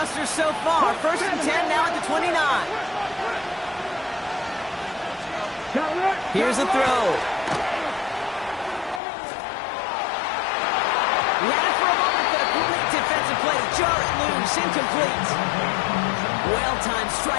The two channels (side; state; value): right; drops out; at 9.0 s